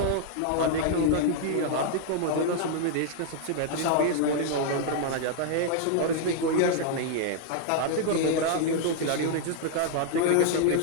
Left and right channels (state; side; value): different; both; correlation 0.00